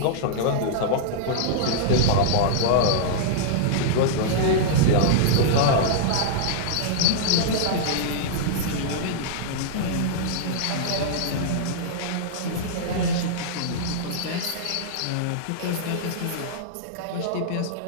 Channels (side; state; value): both; different; correlation -0.02